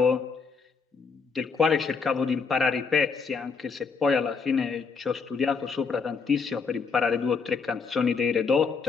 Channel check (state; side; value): quieter; right; 5.2 dB